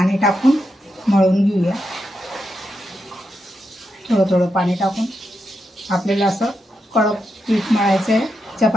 टाकून मळून घेऊया। थोडं थोडं पाणी टाकून आपल्याला असं कडक पीठ मळायचं आहे,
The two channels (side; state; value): both; normal; correlation 0.85